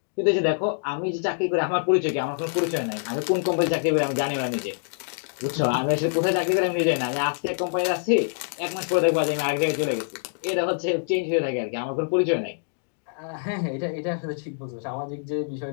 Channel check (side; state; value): right; silent; 61 dB below the other